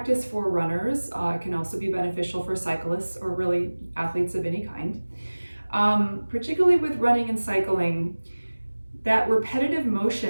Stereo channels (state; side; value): inverted; both; correlation -1.00